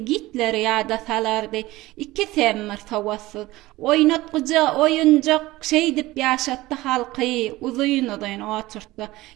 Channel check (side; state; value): left; quieter; 18.4 dB